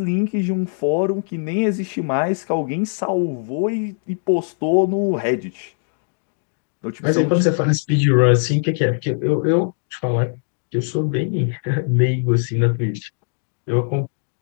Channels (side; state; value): right; silent; digital silence